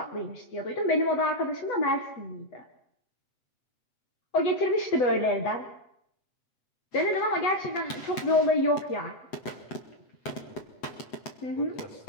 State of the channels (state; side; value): late; right; 7.9 ms